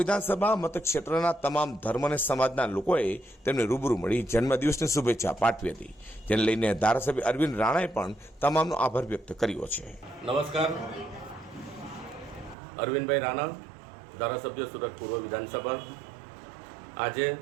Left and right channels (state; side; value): drops out; left; at 12.6 s